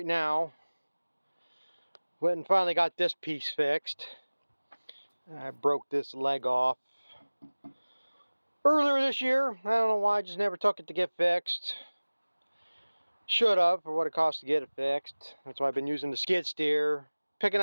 now. Went and finally got this piece fixed. I broke this leg off earlier this year. I don't know why, I just never took it to get fixed. Should have, for what it cost to get it fixed. That's why I've been using the skid steer, picking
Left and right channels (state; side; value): inverted; both; correlation -1.00